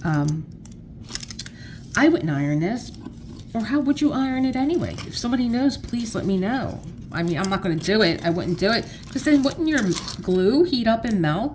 I wouldn't iron this. Or how would you iron it anyway? If somebody knows, please let me know. I mean, I'm not going to do it. I wouldn't do it. Because then wouldn't your glue heat up and melt?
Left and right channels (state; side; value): identical; both; correlation 1.00